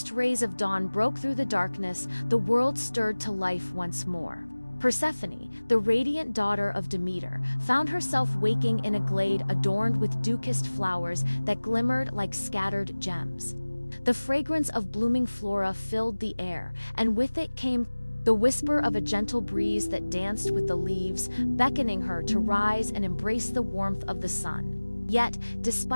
rays of dawn broke through the darkness, the world stirred to life once more. Persephone, the radiant daughter of Demeter, found herself waking in a glade adorned with dukest flowers that glimmered like scattered gems. The fragrance of blooming flora filled the air, and with it came the whisper of a gentle breeze that danced with the leaves, beckoning her to rise and embrace the warmth of the sun. Yet,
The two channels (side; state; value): both; inverted; correlation -1.00